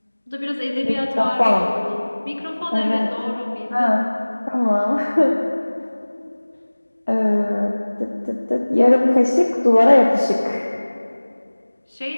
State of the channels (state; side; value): inverted; both; correlation -1.00